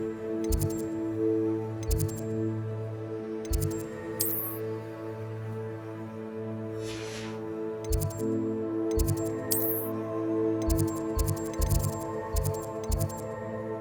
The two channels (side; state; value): both; identical; correlation 1.00